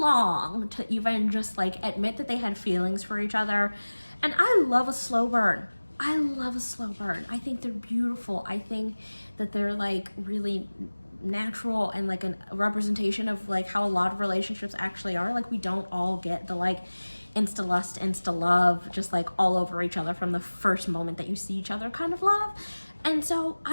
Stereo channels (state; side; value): inverted; both; correlation -1.00